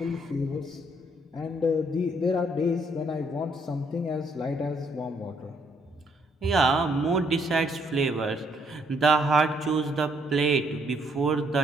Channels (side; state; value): both; normal; correlation 0.69